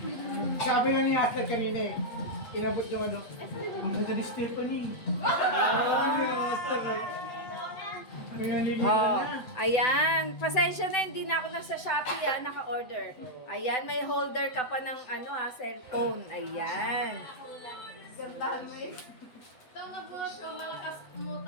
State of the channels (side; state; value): right; late; 7.9 ms